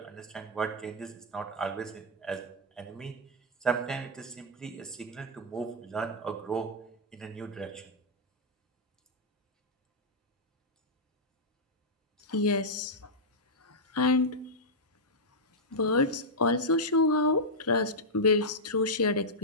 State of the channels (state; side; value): normal; both; correlation -0.07